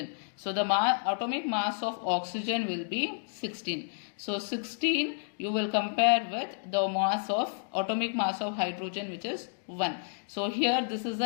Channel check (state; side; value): silent; right; digital silence